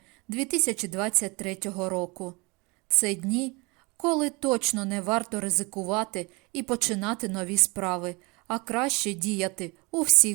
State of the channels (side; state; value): left; quieter; 27.2 dB